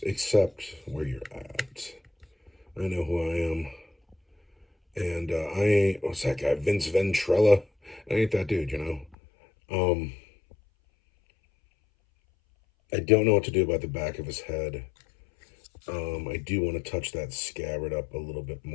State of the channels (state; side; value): drops out; right; at 9.2 s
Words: accept where you're at. I know who I am, and I ain't. What's that guy? Vince Ventrella. I ain't that dude. I don't know what to do about the back of his head. I do want to touch that scabbard up a little bit